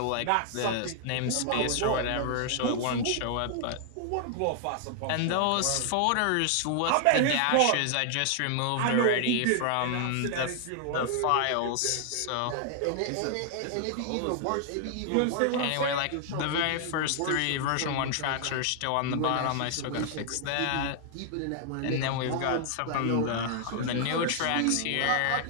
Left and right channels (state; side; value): different; both; correlation 0.00